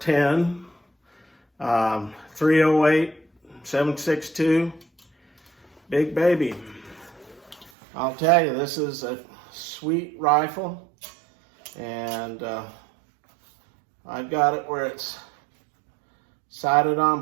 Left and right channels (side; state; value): left; drops out; at 7.7 s